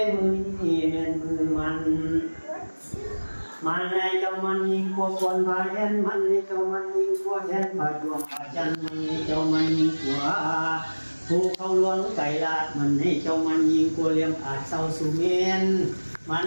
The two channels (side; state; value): both; inverted; correlation -1.00